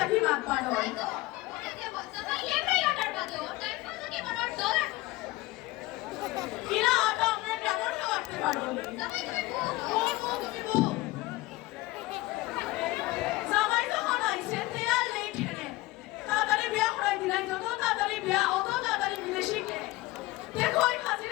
লাগবার হয় কিনা আটা আমরা কেমন করতে পারবো জামাই যখন আইছে তেয়ার নেই ঠেনে তাড়াতাড়ি বিয়া করাই দিলাই যত তাড়াতাড়ি বিয়া অত তাড়াতাড়ি বিদেশি কে দেখো ওই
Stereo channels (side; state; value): right; quieter; 19.8 dB